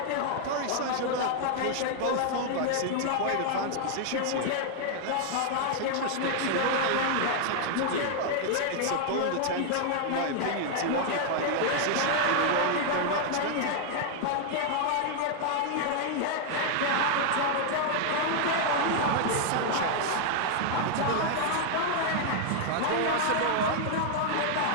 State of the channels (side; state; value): both; different; correlation 0.00